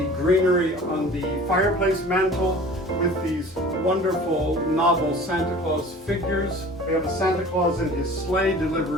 greenery on the fireplace mantle with these wonderful novel Santa Claus figures. We have a Santa Claus in his sleigh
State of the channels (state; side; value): normal; both; correlation 0.44